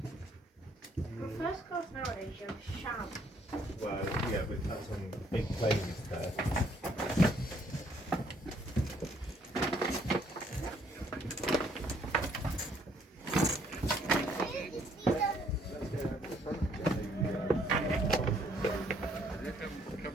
first class nowadays, you're sharp. Well, yeah, but that's on big planes there. Come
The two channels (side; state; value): both; normal; correlation 0.66